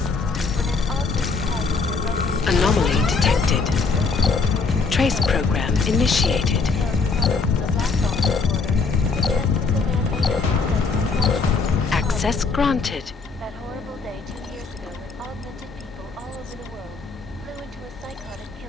when an augmented passenger broke into Anomaly detected. Trace program initiated. Access granted. That horrible day 2 years ago when augmented people all over the world flew into a psychotic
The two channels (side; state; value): right; quieter; 4.5 dB